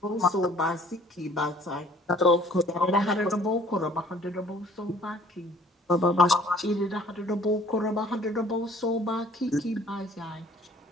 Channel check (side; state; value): both; normal; correlation 0.55